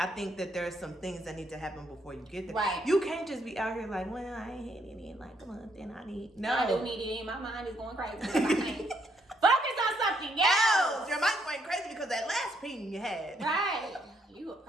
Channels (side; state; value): both; normal; correlation 0.73